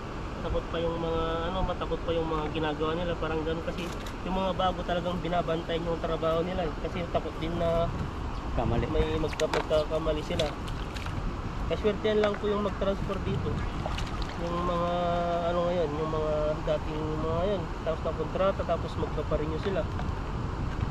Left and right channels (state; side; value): identical; both; correlation 1.00